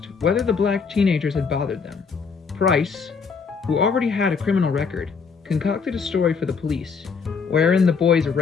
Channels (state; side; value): quieter; right; 5.5 dB